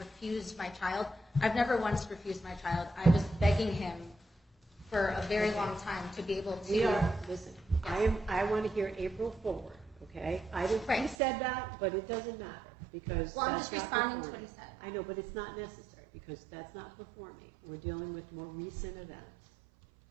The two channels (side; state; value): left; drops out; at 11.2 s